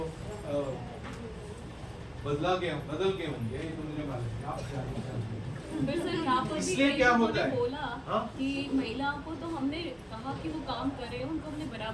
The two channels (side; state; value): both; identical; correlation 1.00